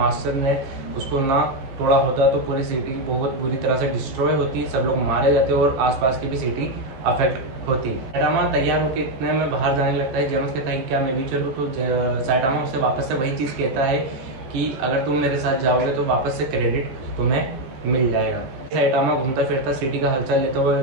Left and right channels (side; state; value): left; late; 15 ms